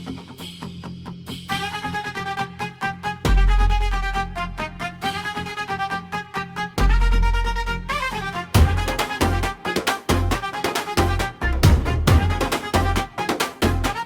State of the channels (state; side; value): identical; both; correlation 1.00